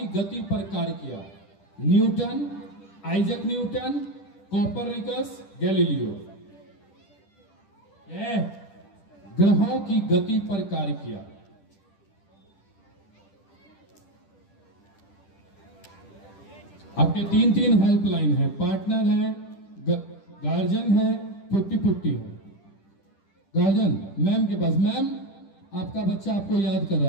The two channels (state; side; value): late; right; 10 ms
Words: गति पर कार्य किया? Newton, Isaac Newton, Copernicus, Galileo? ग्रहों की गति पर कार्य किया। आपके 3 हेल्पलाइन है, पार्टनर है, गार्जियन है, 50-50 है। गार्जियन मैम के पास। मैम, आपका बच्चा आपको याद कर